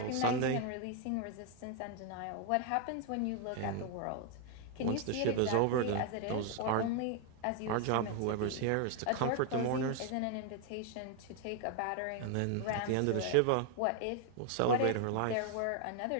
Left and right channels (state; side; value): different; both; correlation 0.01